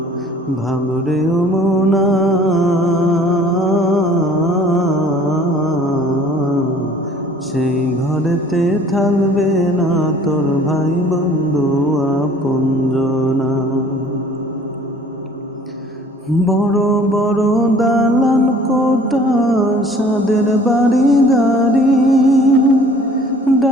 ভাবরে ও মনা, সেই ঘরেতে থাকবে না তোর ভাই বন্ধু আপনজনা। বড় বড় দালান কোঠা, সাদের বাড়ি গাড়ি,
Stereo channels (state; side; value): normal; both; correlation 0.52